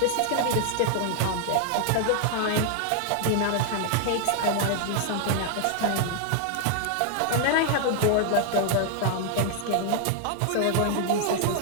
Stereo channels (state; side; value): different; both; correlation 0.00